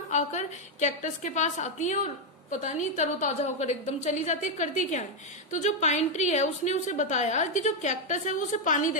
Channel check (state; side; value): normal; both; correlation 0.02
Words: आकर कैक्टस के पास आती हैं और पता नहीं तरोताजा होकर एकदम चली जाती है, करती क्या है। तो जो पाइन ट्री है उसने उसे बताया कि जो कैक्टस है वो उसे पानी